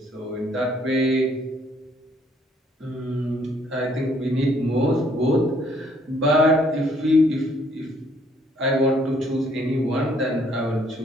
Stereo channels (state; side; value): normal; both; correlation 0.65